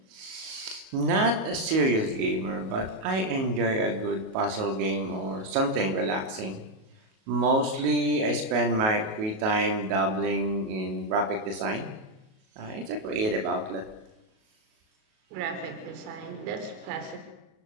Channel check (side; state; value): left; late; 37 ms